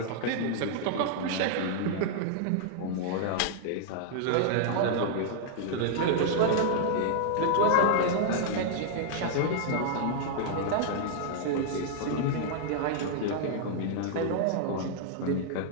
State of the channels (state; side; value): different; both; correlation -0.01